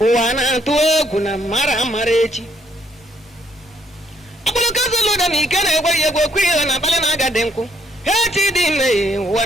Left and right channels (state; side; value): normal; both; correlation 0.69